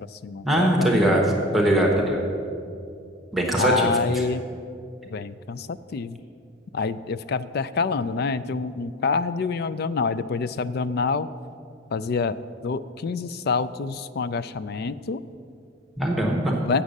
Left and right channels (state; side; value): normal; both; correlation 0.30